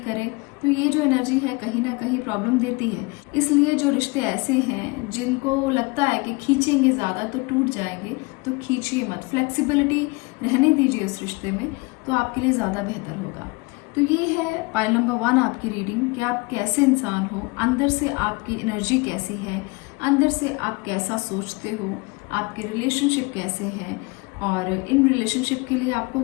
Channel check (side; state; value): right; quieter; 26.5 dB